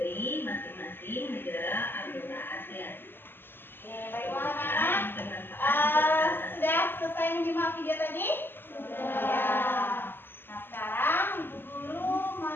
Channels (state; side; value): late; right; 0.10 ms